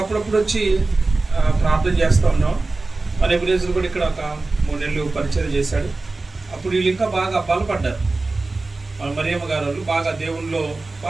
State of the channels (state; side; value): quieter; left; 3.4 dB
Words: వచ్చి ప్రార్థన చేస్తూ ఉన్నాం. మన ఎబ్రేజులు కూడా ఇక్కడ ఒక 3 నెలలు పరిచయం చేశాడు. అప్పుడు వీళ్ళు ఇంకా బాగా బలపడ్డారు. మన మరియమ్మ గారు వాళ్ళు బాగా దేవుళ్ళలో